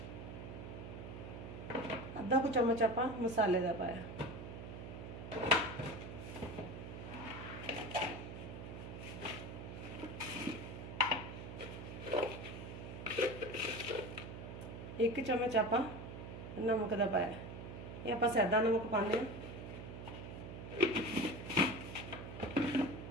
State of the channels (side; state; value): right; noise; hum, 9 dB below the sound